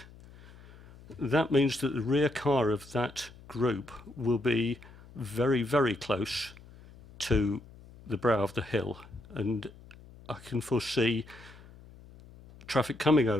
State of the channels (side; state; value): left; noise; hum, 21 dB below the sound